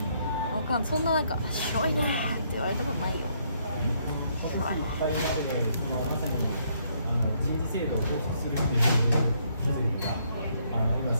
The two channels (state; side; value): inverted; both; correlation -0.71